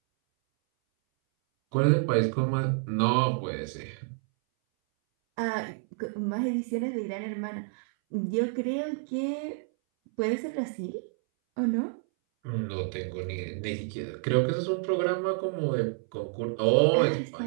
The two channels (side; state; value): left; silent; 59 dB below the other